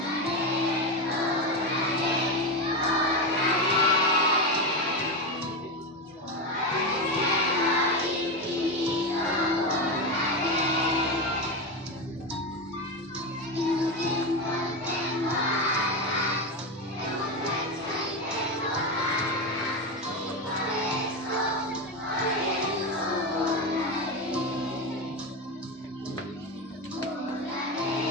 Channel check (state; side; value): normal; both; correlation 0.15